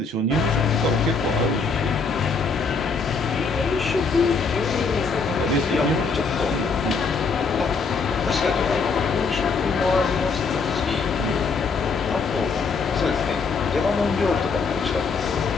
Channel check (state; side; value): quieter; right; 4.7 dB